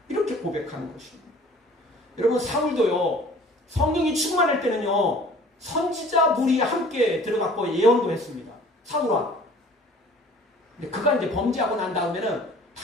이렇게 고백하는 것입니다. 여러분, 사울도요, 성령이 충만할 때는요, 선지자 무리 함께 들어갔고 예언도 했습니다. 사울아. 근데 그가 이제 범죄하고 난 다음에는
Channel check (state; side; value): normal; both; correlation 0.50